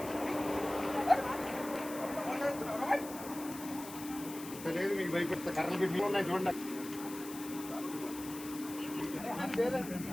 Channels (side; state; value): left; noise; hiss, 13 dB below the sound